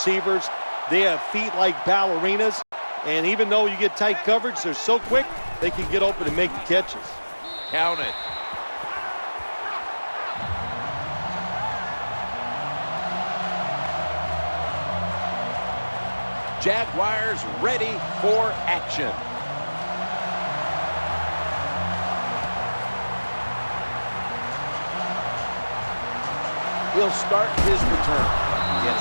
they have feet like ballerinas. And even though you get tight coverage, they're so quick, they can get open and make the catches. Count it. Jaguars ready for action. He'll start his return.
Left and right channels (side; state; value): both; inverted; correlation -1.00